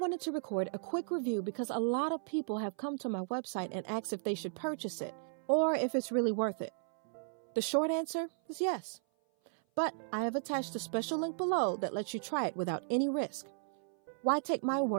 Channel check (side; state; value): left; silent; 54 dB below the other